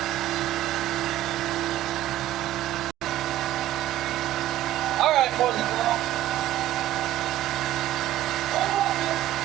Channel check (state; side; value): quieter; left; 13.6 dB